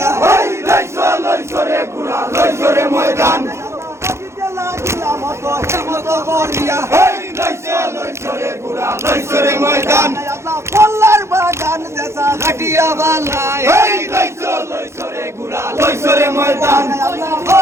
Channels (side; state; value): left; late; 0.13 ms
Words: লইছো রে ঘোড়া লইছো রে ময়দান এই লইছো রে ঘোড়া লইছো রে ময়দান কল্লার বাগান দেশা ঘাটিয়া বালাই এই লইছো রে ঘোড়া লইছো রে ময়দান